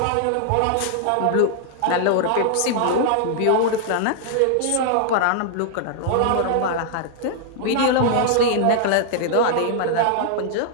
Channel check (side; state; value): both; different; correlation -0.01